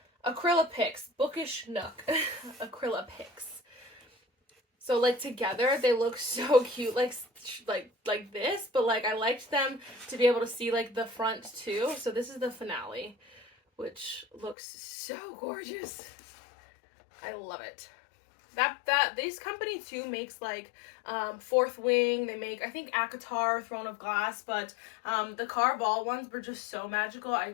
Acryla Picks. Bookish Nook. Acryla Picks. So like together they look so cute, like this, but like I liked them to be able to see like the front too. So this is the finale, which looks so gorgeous. I love it. This company too makes like Fourth Wing. They make, I think, ACOTAR, Throne of Glass, but the Carval ones were just so magical I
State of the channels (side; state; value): right; drops out; at 14.6 s